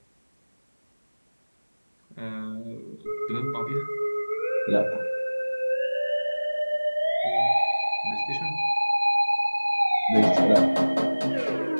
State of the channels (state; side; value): inverted; both; correlation -1.00